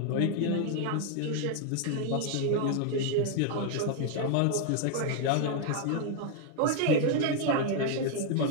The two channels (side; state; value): both; different; correlation 0.00